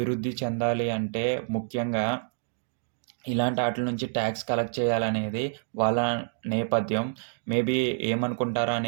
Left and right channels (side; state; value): left; silent; digital silence